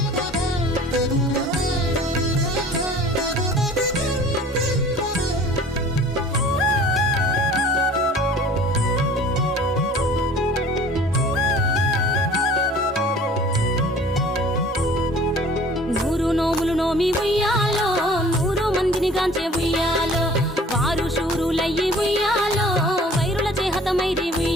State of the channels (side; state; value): both; normal; correlation 0.48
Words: నోమి ఉయ్యాలో 100 మందిని గాంచే ఉయ్యాలో వారు శూరులయ్యి ఉయ్యాలో వైరుల చేహతమైరి